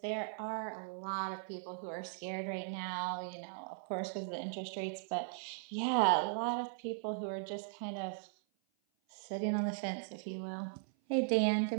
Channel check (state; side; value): silent; left; 52 dB below the other